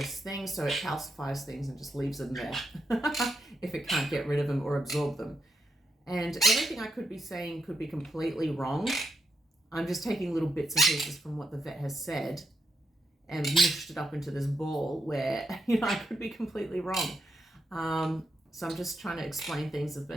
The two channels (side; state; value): both; normal; correlation 0.82